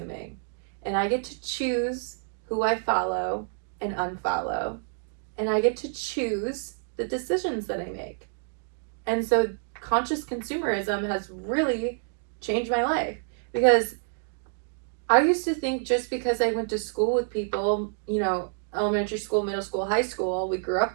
And I get to choose who I follow and unfollow. And I get to choose the decisions that I make. And so conscious consumerism has really changed my life, because I used to think just because I went to school with people, elementary school, middle school, high school, we grew up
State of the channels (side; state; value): left; silent; digital silence